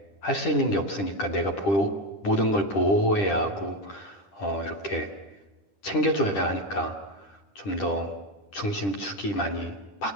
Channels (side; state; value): right; late; 10 ms